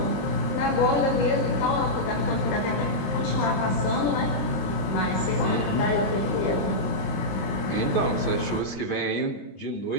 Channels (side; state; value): right; late; 21 ms